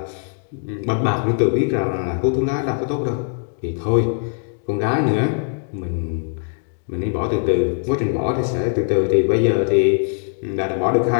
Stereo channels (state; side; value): silent; right; 60 dB below the other